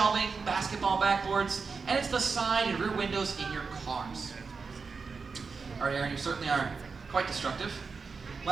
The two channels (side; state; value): left; quieter; 4.9 dB